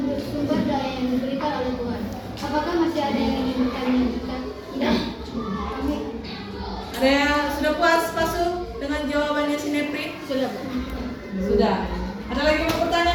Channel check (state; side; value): identical; both; correlation 1.00